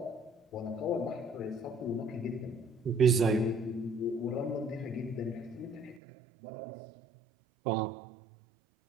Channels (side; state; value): left; drops out; at 6.0 s